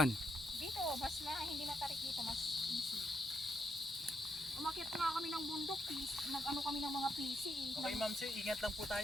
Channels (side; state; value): both; normal; correlation 0.79